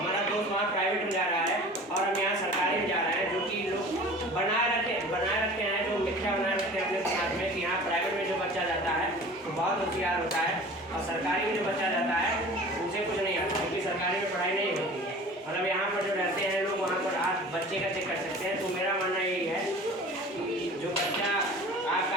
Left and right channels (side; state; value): both; normal; correlation 0.41